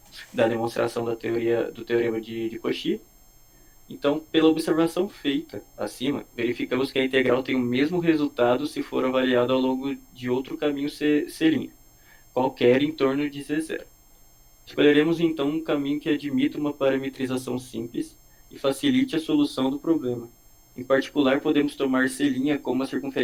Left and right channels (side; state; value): both; identical; correlation 1.00